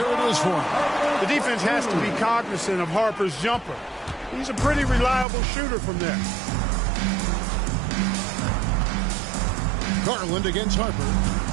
it is for him. The defense has to be cognizant of Harper's jumper. He's a pretty reliable shooter from there. Garland against Harper.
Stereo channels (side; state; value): left; drops out; at 5.2 s